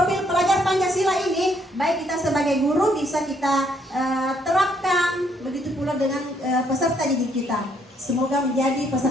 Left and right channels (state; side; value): normal; both; correlation 0.70